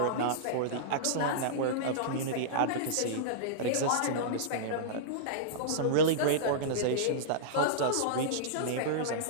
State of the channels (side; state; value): both; different; correlation -0.03